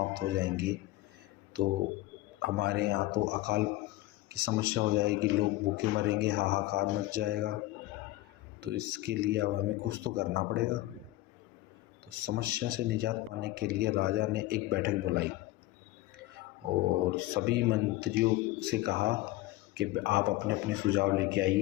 हो जाएंगे, तो हमारे यहाँ तो अकाल की समस्या हो जाएगी, लोग भूखे मरेंगे, हाहाकार मच जाएगा। तो इसके लिए अब हमें कुछ तो करना पड़ेगा। तो समस्या से निजात पाने के लिए राजा ने एक बैठक बुलाई और सभी मंत्रियों से कहा कि आप अपने अपने सुझाव लेके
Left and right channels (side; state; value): right; quieter; 17.7 dB